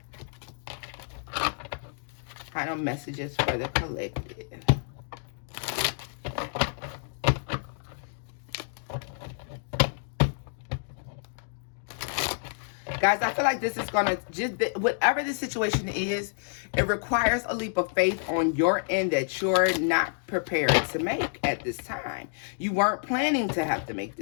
Final messages for the collective. Guys, I feel like this is going to, just whatever the situation is, it requires a leap of faith on your end that you're not prepared to make at this time. You weren't planning to have to make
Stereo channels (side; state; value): right; silent; digital silence